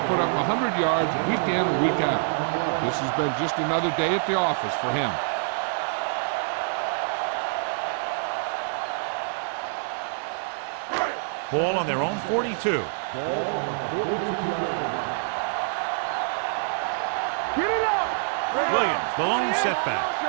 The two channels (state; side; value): silent; left; 61 dB below the other